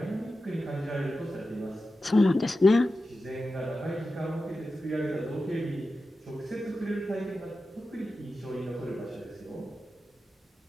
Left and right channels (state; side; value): normal; both; correlation 0.92